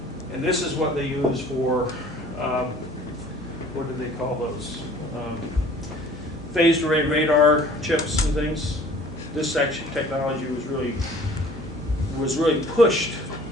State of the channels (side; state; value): both; normal; correlation 0.51